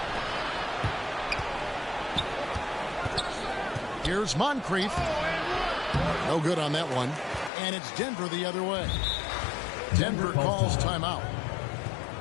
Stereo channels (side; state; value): right; drops out; at 7.5 s